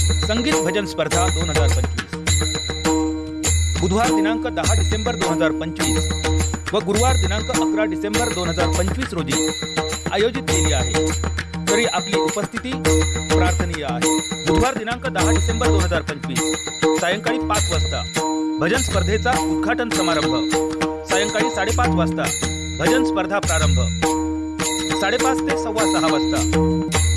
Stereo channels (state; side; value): identical; both; correlation 1.00